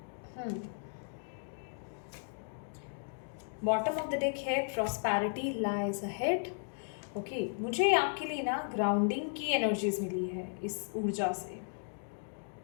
Bottom of the deck है प्रॉस्पेरिटी लाइज अहेड। ओके, मुझे आपके लिए ना ग्राउंडिंग की एनर्जीज मिली है इस ऊर्जा से।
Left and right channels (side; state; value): right; silent; digital silence